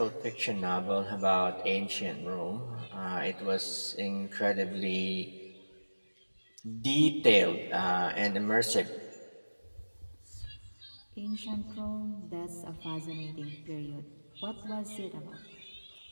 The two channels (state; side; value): inverted; both; correlation -1.00